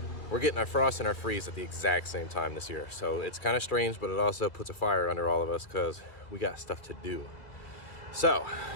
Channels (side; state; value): right; late; 2.6 ms